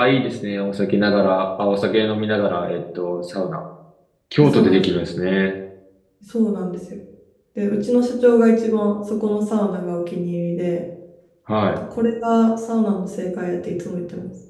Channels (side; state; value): both; identical; correlation 1.00